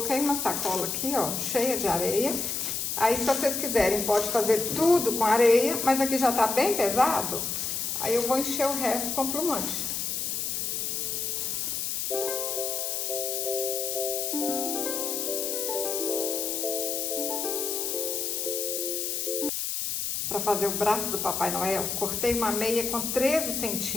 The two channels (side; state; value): left; noise; hiss, 1 dB below the sound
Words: uma sacola aqui, ó, cheia de areia. Aí, se vocês quiserem, pode fazer tudo com areia, mas aqui já tá bem pesado. Aí eu vou encher o resto com plumante. Para fazer o braço do Papai Noel, cortei uma meia com 13